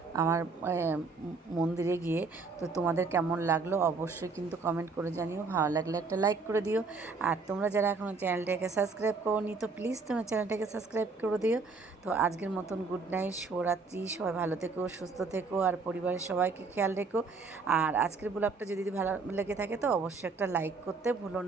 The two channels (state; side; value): quieter; left; 4.3 dB